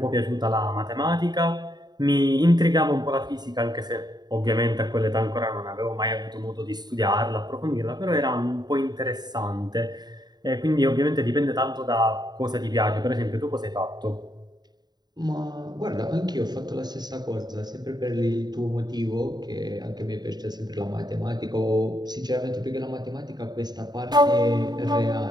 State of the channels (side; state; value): left; late; 0.20 ms